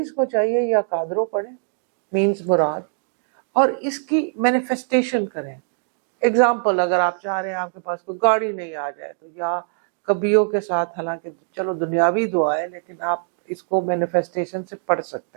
کو چاہیے یا قادرو پڑھیں, مینز مراد, اور اس کی مینیفیسٹیشن کریں. ایگزامپل, اگر آپ چاہ رہے ہیں آپ کے پاس کوئی گاڑی نہیں آ جائے تو یا کبیوں کے ساتھ, حالانکہ چلو دنیاوی دعا ہے لیکن آپ اس کو مینیفیسٹیشن سے پڑھ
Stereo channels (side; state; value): left; silent; digital silence